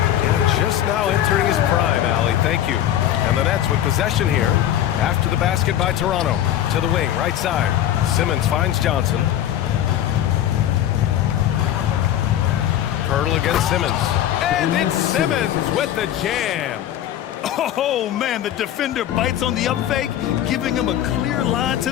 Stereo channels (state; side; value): quieter; right; 11.5 dB